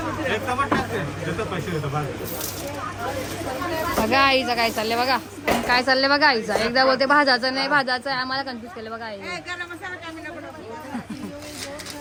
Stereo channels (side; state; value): both; identical; correlation 1.00